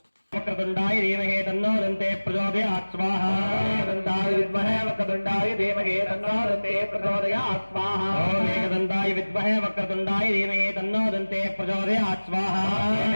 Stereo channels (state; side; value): inverted; both; correlation -1.00